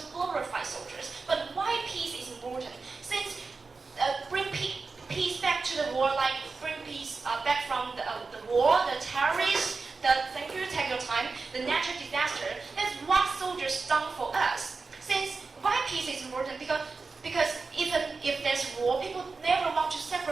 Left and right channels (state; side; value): quieter; left; 4.3 dB